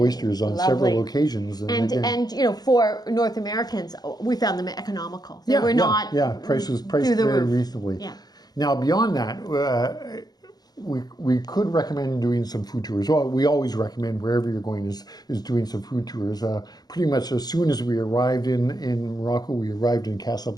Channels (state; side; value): late; right; 0.19 ms